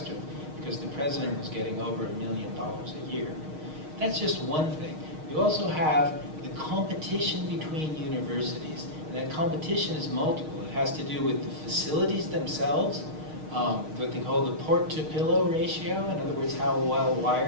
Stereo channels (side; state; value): left; late; 6.4 ms